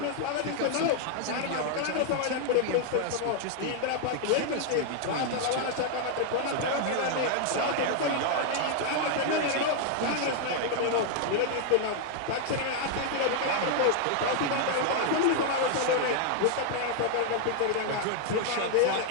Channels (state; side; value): different; both; correlation 0.00